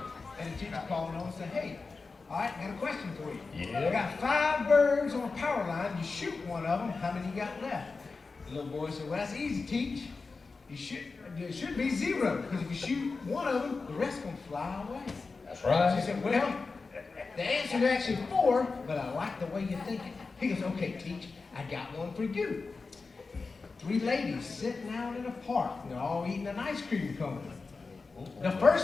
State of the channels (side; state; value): right; quieter; 4.2 dB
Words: and the teacher called him and said, hey, all right, I got a question for you. Yeah. I got 5 birds on a power line. You shoot one of them, how many you got left? The little boy said, well, that's easy, teach. It should be 0, because if you shoot one of them, the rest gonna fly away. That's right. She said, well, the answer is actually 4, but I like the way you're thinking. He goes, okay, teach, I got one for you. 3 ladies sitting out in a park. They're all eating an ice cream cone. The